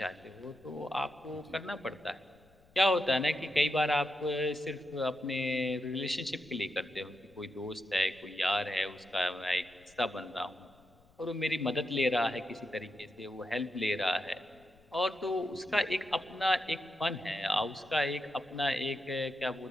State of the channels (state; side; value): noise; left; rumble, 29 dB below the sound